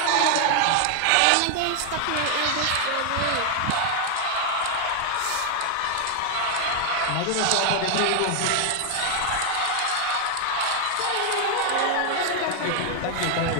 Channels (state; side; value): different; both; correlation 0.00